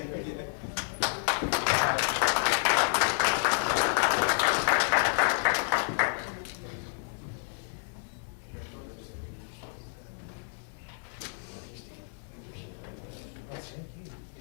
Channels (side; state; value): right; silent; digital silence